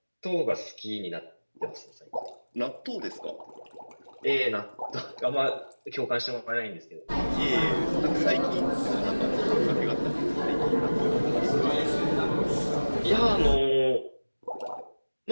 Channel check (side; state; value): both; inverted; correlation -1.00